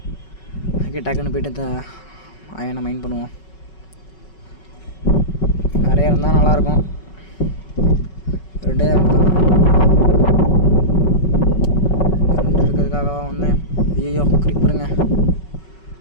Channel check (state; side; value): late; right; 5.3 ms